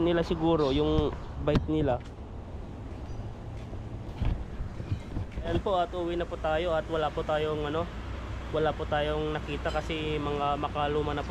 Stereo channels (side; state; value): both; identical; correlation 1.00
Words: nila siguro, yung bike nila. Ayan po, at uwi na po tayo at wala po tayong ano, wala po tayong nakita kasi mga makaluma na